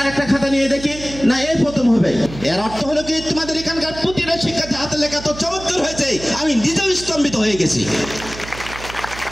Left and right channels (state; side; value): noise; right; hum, 13 dB below the sound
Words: একটা খাতা নিয়ে দেখি না এই প্রথম হবে। এর অর্থ হলো কি, তোমাদের এখানকার প্রতিটা শিক্ষার্থী হাতে লেখা তো চমৎকার হয়েছে, আমি নিজেও স্তম্ভিত হয়ে গেছি।